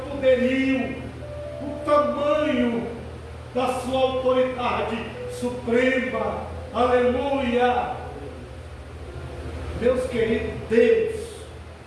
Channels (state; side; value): identical; both; correlation 1.00